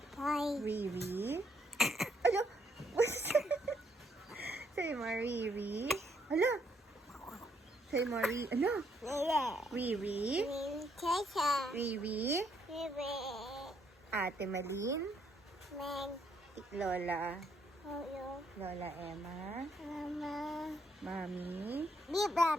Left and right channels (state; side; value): normal; both; correlation 0.72